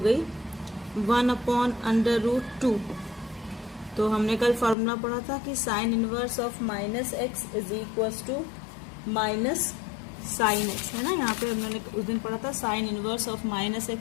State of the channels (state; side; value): drops out; right; at 4.8 s